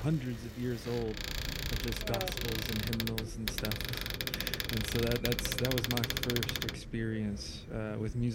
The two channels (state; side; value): identical; both; correlation 1.00